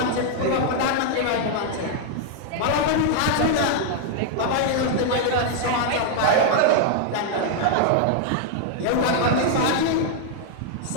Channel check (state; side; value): different; both; correlation -0.01